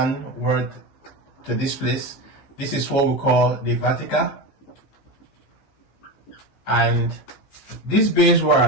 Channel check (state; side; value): late; right; 15 ms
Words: to this place. This is what we call the vertical. And this base